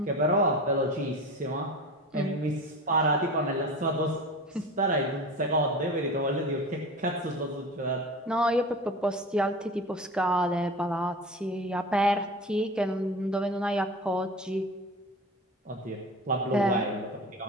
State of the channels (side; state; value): both; normal; correlation 0.33